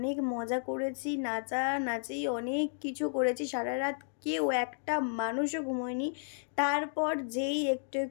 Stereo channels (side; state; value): right; silent; digital silence